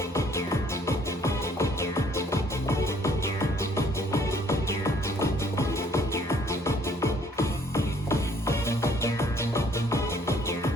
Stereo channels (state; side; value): normal; both; correlation 0.61